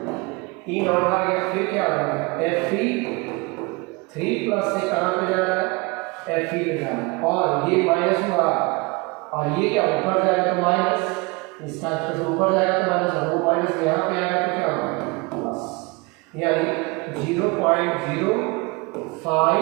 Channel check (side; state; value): left; quieter; 27.3 dB